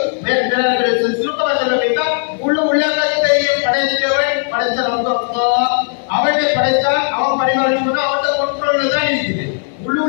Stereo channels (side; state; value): right; silent; 66 dB below the other